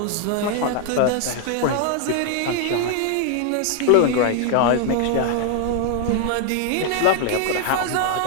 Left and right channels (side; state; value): both; different; correlation 0.00